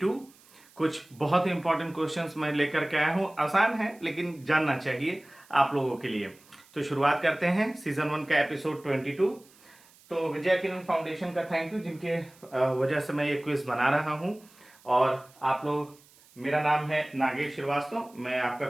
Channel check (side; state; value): right; noise; hiss, 27 dB below the sound